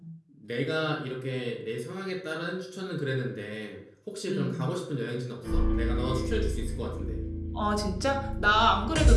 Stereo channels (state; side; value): identical; both; correlation 1.00